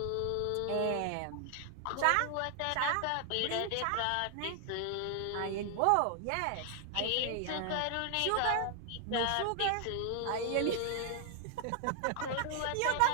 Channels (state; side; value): different; both; correlation 0.00